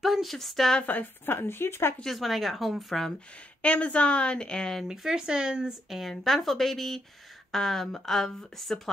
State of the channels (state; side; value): normal; both; correlation 0.79